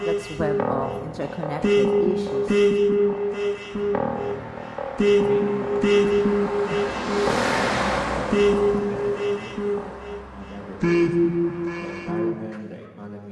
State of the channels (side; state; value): both; identical; correlation 1.00